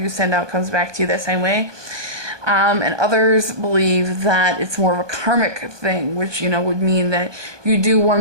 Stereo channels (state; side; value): late; left; 1.2 ms